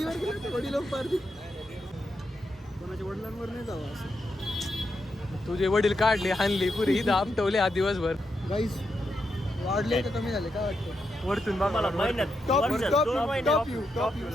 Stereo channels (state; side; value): normal; both; correlation 0.84